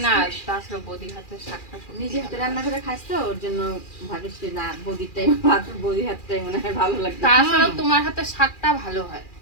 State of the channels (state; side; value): late; right; 2.4 ms